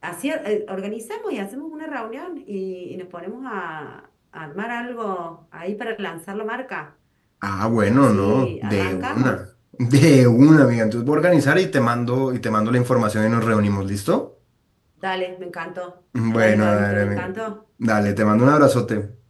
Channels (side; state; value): both; identical; correlation 1.00